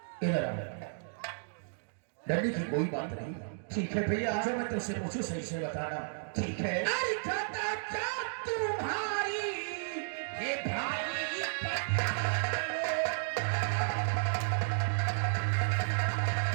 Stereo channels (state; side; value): silent; left; digital silence